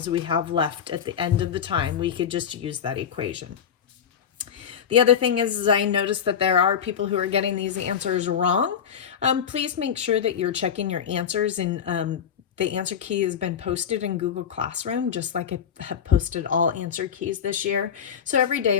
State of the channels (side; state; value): right; quieter; 8.0 dB